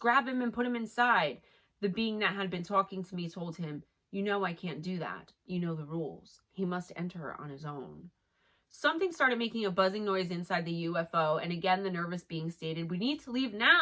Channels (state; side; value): identical; both; correlation 1.00